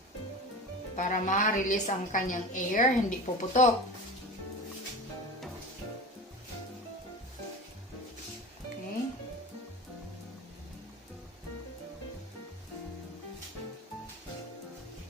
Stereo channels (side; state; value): both; normal; correlation 0.31